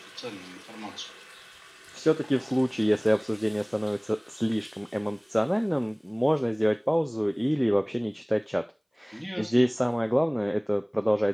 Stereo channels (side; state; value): both; identical; correlation 1.00